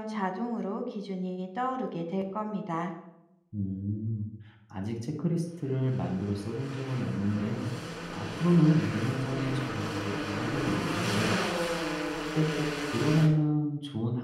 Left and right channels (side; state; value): both; identical; correlation 1.00